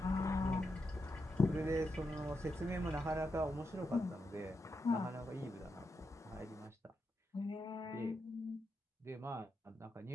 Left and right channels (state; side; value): normal; both; correlation 0.85